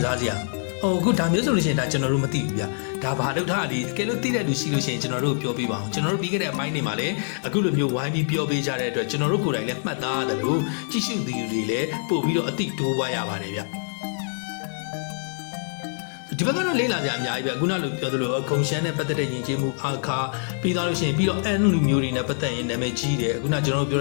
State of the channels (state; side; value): silent; right; digital silence